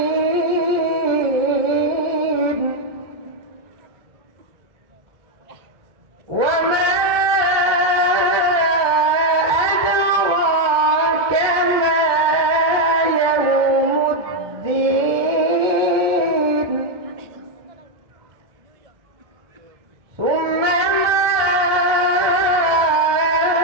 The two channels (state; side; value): late; left; 1.2 ms